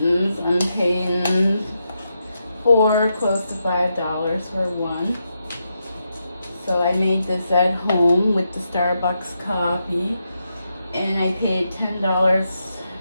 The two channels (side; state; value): both; inverted; correlation -0.84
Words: I'm paying close to $5 for one. So I made this at home with the Starbucks coffee, and I paid $10